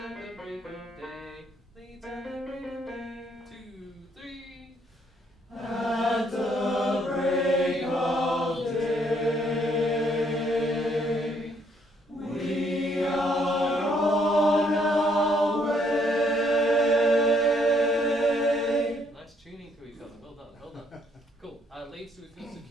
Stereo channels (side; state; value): both; normal; correlation 0.69